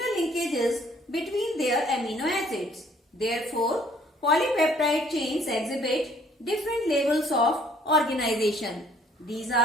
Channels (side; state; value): both; normal; correlation 0.60